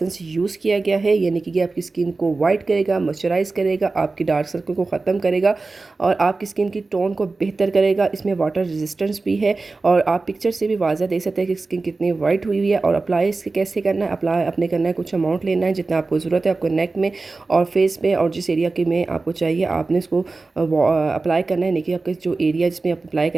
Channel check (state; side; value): quieter; left; 3.7 dB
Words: यूज़ किया गया है, यानी कि ये आपकी स्किन को वाइट करेगा, मॉइस्चराइज करेगा, आपकी डार्क सर्कल को ख़त्म करेगा और आपकी स्किन की टोन को बेहतर करेगा। इसमें वाटर रेजिस्टेंस भी है और आप पिक्चर से भी वाज़ा देख सकते हैं कि स्किन कितनी वाइट हुई हुई है। और अप्लाई इसके कैसे करना है, अप्लाई अपने करना है, कुछ अमाउंट लेना है जितना आपको ज़रूरत है, आपको नेक में और फेस पे और जिस एरिया के में आपको चाहिए आपने इसको अप्लाई करना है। देखिए आपके जो एरिया जिसमें आप अप्लाई